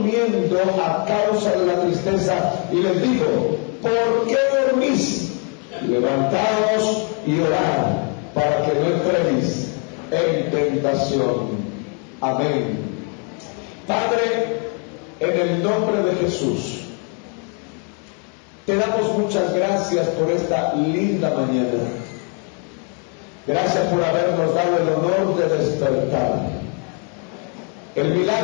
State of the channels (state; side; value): quieter; right; 38.9 dB